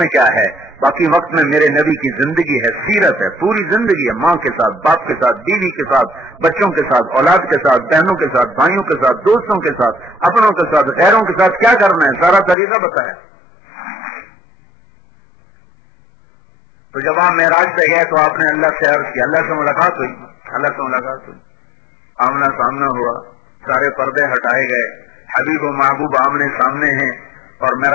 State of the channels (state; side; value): drops out; right; at 12.6 s